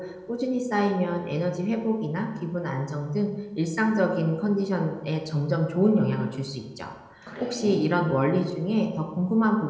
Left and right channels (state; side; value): identical; both; correlation 1.00